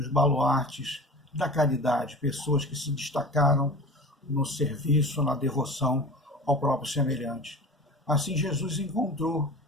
baluartes da caridade, pessoas que se destacaram no serviço, na devoção ao próprio semelhante. Assim, Jesus encontrou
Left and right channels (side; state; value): both; normal; correlation 0.36